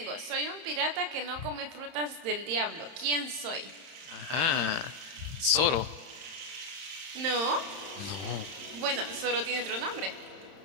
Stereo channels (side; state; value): left; late; 31 ms